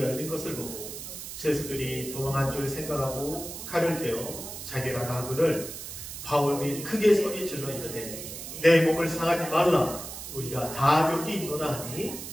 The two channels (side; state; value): right; noise; hiss, 9 dB below the sound